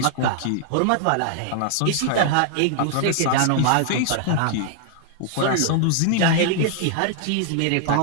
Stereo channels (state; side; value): different; both; correlation 0.00